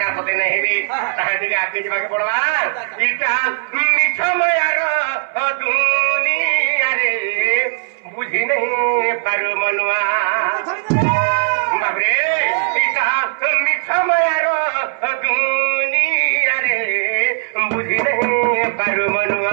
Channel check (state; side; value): silent; left; 64 dB below the other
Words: पते नहीं रे ताहे दिके आके जबा के पड़वा इटा मिठमयार दुनिया रे बुझी नहीं पारु मनुआ बाबरे इटा मिठमयार दुनिया रे बुझी नहीं पारु